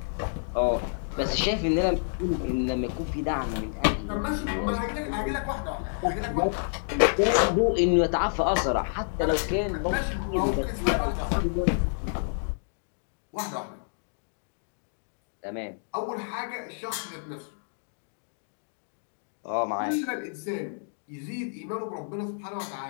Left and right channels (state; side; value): silent; right; digital silence